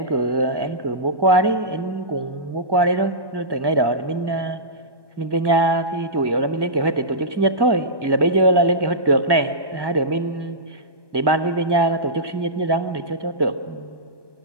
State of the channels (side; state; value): left; late; 1.2 ms